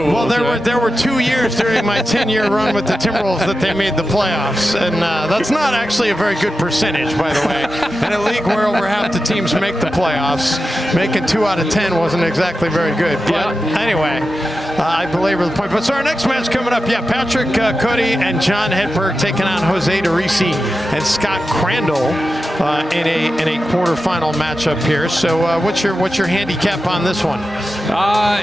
Well, there were 2 years during my 10-year run with the Timberwolves that they made the playoffs, and that's not actually a very good percentage, by the way. In a league where over half the teams make the playoffs, making 2 out of 10 wasn't exactly very good. But anyway, I belabor the point. But so our next match coming up, Patrick Cody and John Hedberg taking on Jose DeRisi and Scott Crandall in a quarterfinal matchup here. So what's your handicap on this one?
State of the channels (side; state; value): both; normal; correlation 0.91